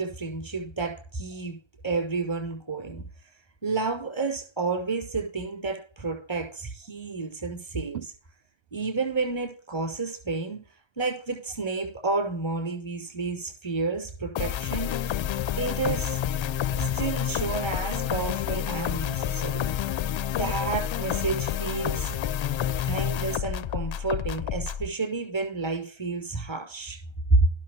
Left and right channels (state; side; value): late; right; 1.3 ms